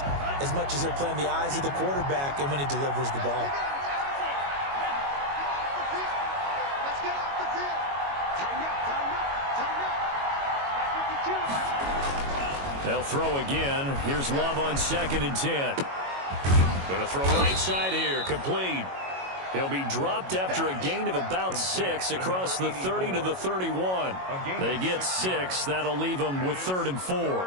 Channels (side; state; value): left; late; 22 ms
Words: as much as they're playing the eyes of the quarterback and when he delivers the ball. Let's get off the field. Tighten up, tighten up, tighten up. 52. They'll throw again. Here's Love on 2nd and 10. Going to throw right side here. Complete. He'll be dropped after a gain of about 6 across the 30 to the 31. They get 6. That'll leave them with 3rd and 4.